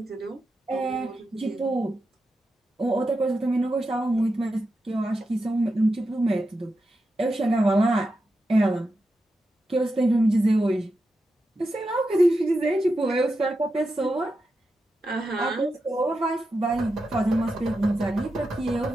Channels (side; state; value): both; normal; correlation 0.88